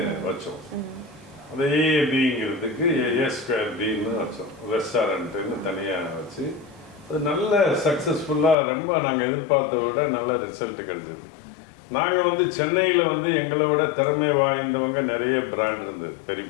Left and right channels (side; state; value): right; drops out; at 8.6 s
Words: வச்சோம். அந்த AABங்கிறதுக்கு A2Bன்னு வச்சோம். ரெஸ்டாரண்ட்டுன்னு தனியாக வச்சு அது நல்ல சக்ஸஸ்ஃபுல்லாக ரொம்ப நாங்கள் எதிர்பார்த்த விட நல்ல ரிசல்ட் கிடைச்சது. நாங்கள் வந்து சென்னையில் வந்து எங்களை விட திறமை வாய்ந்தவங்க நிறைய பிராண்ட் இருந்தது, பெரிய